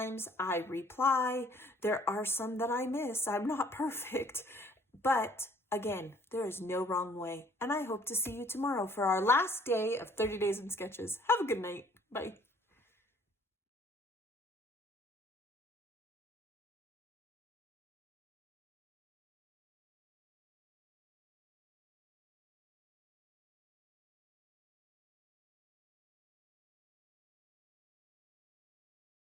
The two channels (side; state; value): both; normal; correlation 0.58